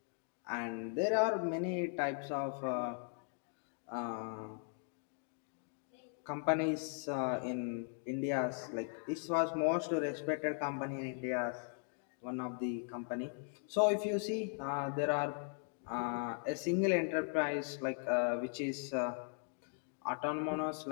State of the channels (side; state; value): right; silent; 52 dB below the other